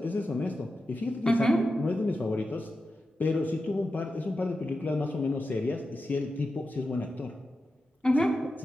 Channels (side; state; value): both; normal; correlation 0.90